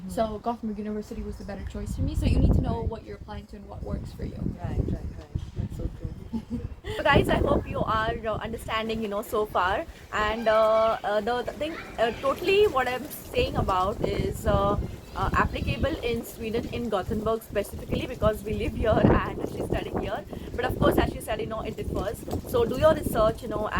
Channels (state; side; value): identical; both; correlation 1.00